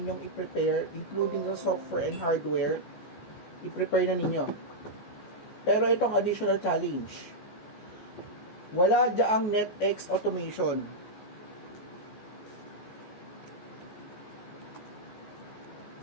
i-prepare, including the software and hardware, i-prepare na ninyo. Pero itong additional challenge, wala diyaang NetX automation.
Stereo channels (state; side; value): late; right; 14 ms